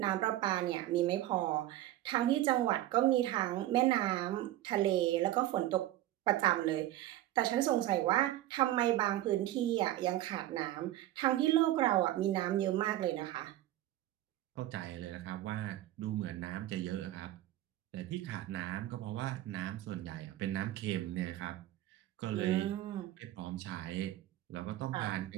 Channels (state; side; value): quieter; left; 14.5 dB